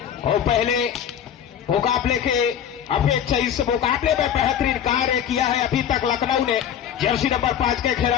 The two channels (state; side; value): quieter; right; 9.2 dB